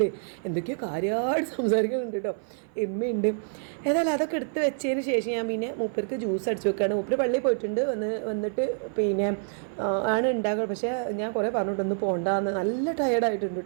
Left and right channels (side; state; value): left; silent; 56 dB below the other